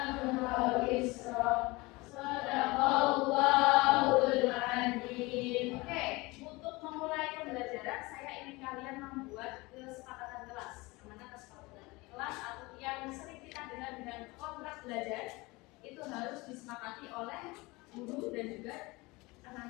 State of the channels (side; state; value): right; quieter; 23.2 dB